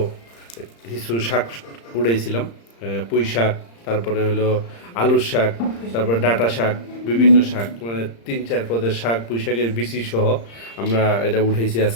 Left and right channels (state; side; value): late; right; 35 ms